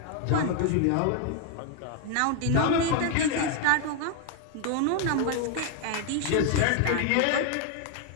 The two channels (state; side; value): different; both; correlation 0.01